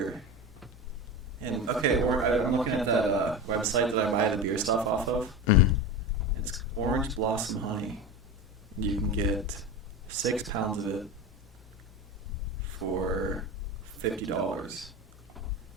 And okay, I'm looking at that website that I buy the beer stuff off of. Mm-hmm. It's Orange Blossom Honey. You can get 6 pounds of it for $50.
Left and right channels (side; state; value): both; normal; correlation 0.24